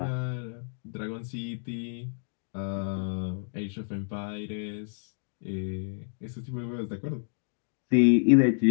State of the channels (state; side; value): silent; right; digital silence